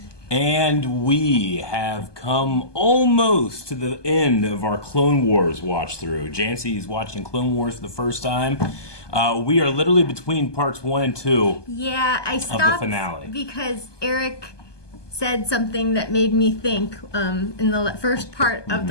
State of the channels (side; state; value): right; late; 1.2 ms